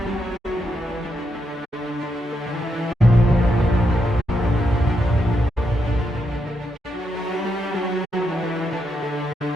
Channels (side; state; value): both; normal; correlation 0.81